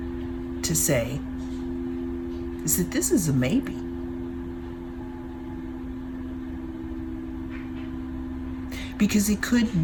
to say is that this is a maybe. Because it could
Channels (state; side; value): identical; both; correlation 1.00